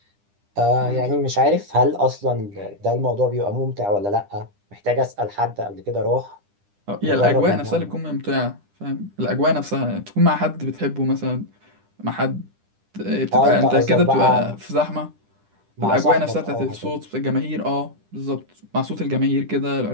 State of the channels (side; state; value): left; late; 10 ms